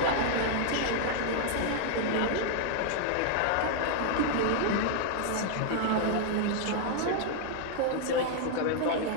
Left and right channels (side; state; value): both; different; correlation 0.00